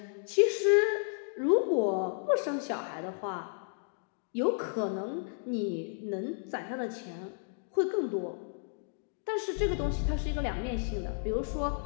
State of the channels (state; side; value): silent; right; digital silence